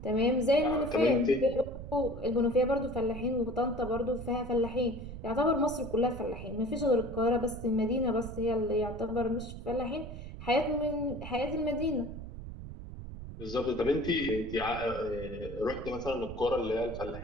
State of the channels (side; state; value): right; noise; rumble, 10 dB below the sound